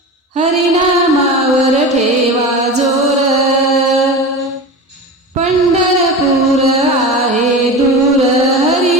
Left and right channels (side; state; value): both; normal; correlation 0.28